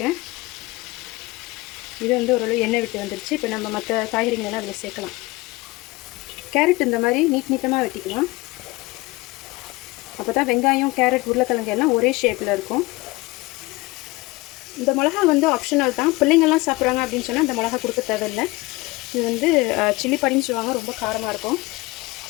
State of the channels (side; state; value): right; quieter; 22.0 dB